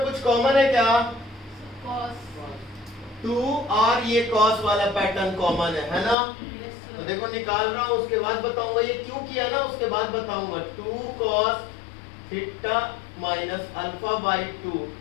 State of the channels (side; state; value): right; drops out; at 6.2 s